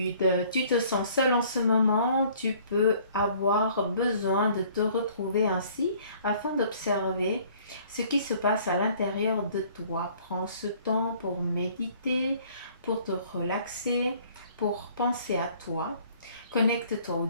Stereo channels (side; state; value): both; inverted; correlation -0.56